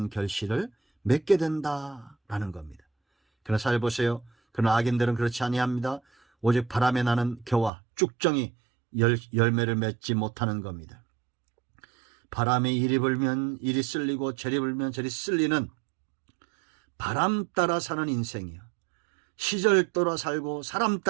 결실을 맺게 된다라는 겁니다. 그러나 잘 보세요. 그러나 악인들은 그렇지 아니합니다. 오직 바람에 나는 겨와 쭉정이 열매를 맺지 못하는 겁니다. 바람이 이리 불면 이리 쓸리고 저리 불면 저리 쓸리는 바람 따라 사는 인생이요, 시절 따라 살고 사람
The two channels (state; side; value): drops out; left; at 7.7 s